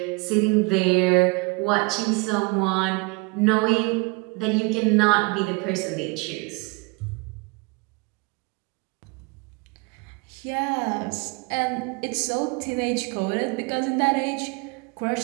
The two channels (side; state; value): left; quieter; 28.3 dB